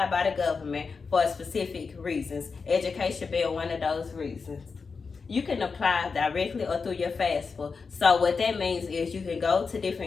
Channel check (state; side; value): quieter; right; 5.0 dB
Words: by the government for specific reasons. Education being one of those reasons. You can apply directly or through your FAFSA. So what that means is you can go to